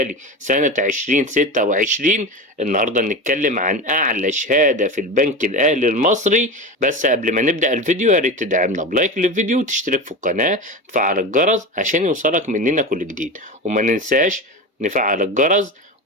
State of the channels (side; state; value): both; normal; correlation 0.24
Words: سنة 2026. النهاردة نتكلم عن أعلى شهادة في البنك الأهلي المصري. بس قبل ما نبدأ الفيديو يا ريت تدعمنا بلايك للفيديو وتشترك في القناة وتفعل الجرس عشان يوصلك مننا كل جديد، وما ننساش نفعل الجرس